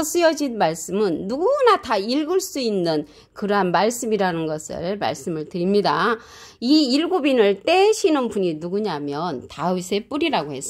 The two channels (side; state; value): both; identical; correlation 1.00